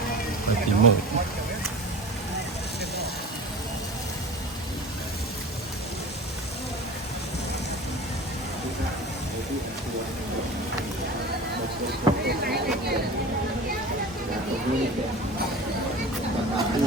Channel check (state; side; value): normal; both; correlation 0.36